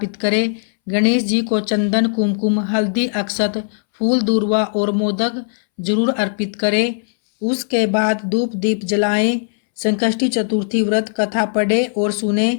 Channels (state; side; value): silent; right; 65 dB below the other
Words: करें। गणेश जी को चंदन, कुमकुम, हल्दी, अक्षत, फूल, दूर्वा और मोदक जरूर अर्पित करें। उसके बाद धूप दीप जलाएं, संकष्टी चतुर्थी व्रत कथा पढ़े और सुने।